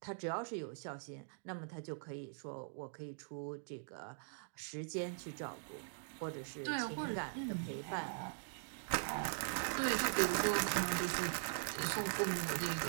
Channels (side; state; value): left; silent; digital silence